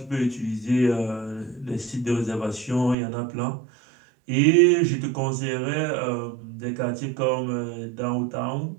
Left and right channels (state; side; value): drops out; left; at 3.0 s